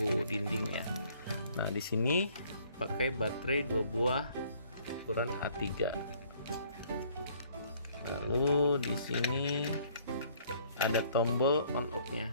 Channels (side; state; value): both; inverted; correlation -0.60